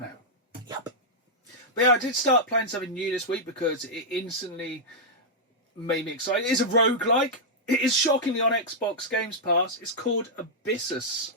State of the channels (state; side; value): normal; both; correlation -0.07